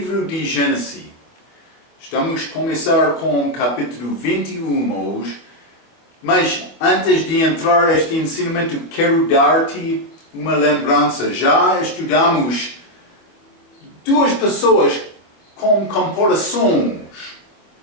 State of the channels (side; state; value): right; late; 24 ms